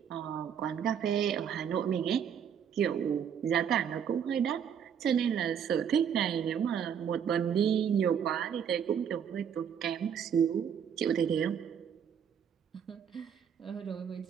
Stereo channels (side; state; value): left; quieter; 8.1 dB